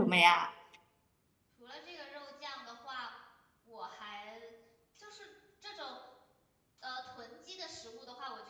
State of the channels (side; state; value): both; identical; correlation 1.00